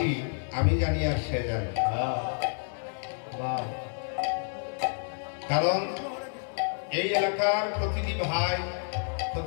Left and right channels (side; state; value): right; silent; 58 dB below the other